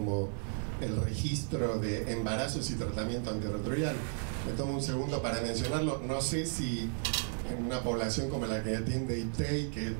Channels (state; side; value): silent; left; 55 dB below the other